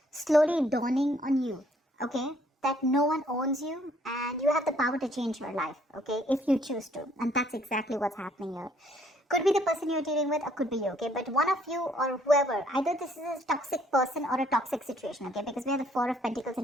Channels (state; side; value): normal; both; correlation 0.64